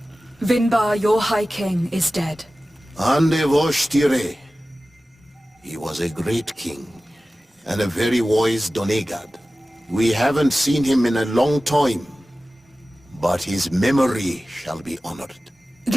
Vinbar, your High King, is dead. Ande Voshtire. He was a great king, and a very wise Donegad. We haven't seen him in a long time, but his memory shall be honored.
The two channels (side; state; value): both; normal; correlation 0.96